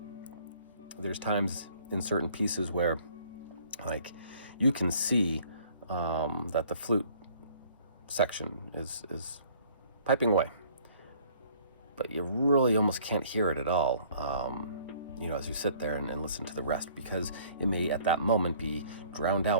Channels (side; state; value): both; inverted; correlation -0.57